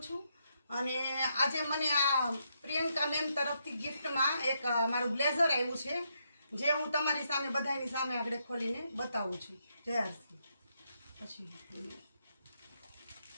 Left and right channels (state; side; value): inverted; both; correlation -0.79